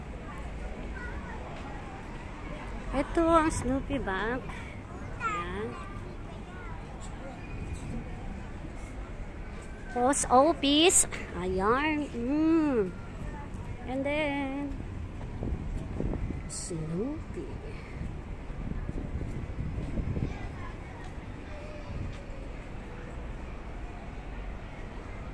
Ito ang Snoopy Bank. Ayan. Post office. Ayan. And then Snoopy.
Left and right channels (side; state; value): both; identical; correlation 1.00